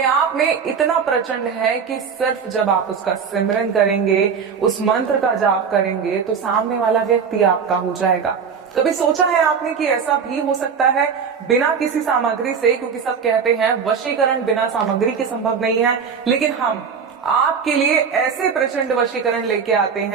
आप में इतना प्रचंड है कि सिर्फ जब आप उसका सिमरन करेंगे, उस मंत्र का जाप करेंगे, तो सामने वाला व्यक्ति आपका हो जाएगा। कभी सोचा है आपने कि ऐसा भी हो सकता है बिना किसी सामग्री से? क्योंकि सब कहते हैं वशीकरण बिना सामग्री के संभव नहीं है, लेकिन हम आपके लिए ऐसे प्रचंड वशीकरण लेके आते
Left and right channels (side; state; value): left; quieter; 6.4 dB